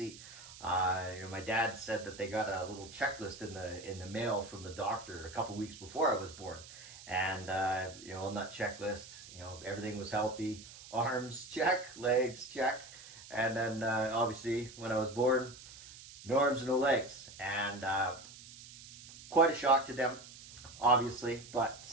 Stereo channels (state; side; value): noise; right; hiss, 17 dB below the sound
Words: My dad said that they got a little checklist in the mail from the doctor a couple weeks before I was born, and on that checklist, everything was healthy. Arms check, legs check, and then obviously when I was born, no arms and no legs, and quite a shock to them, obviously, but